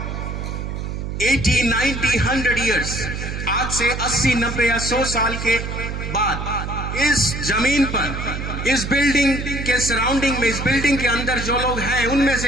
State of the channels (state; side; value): noise; right; hum, 5 dB below the sound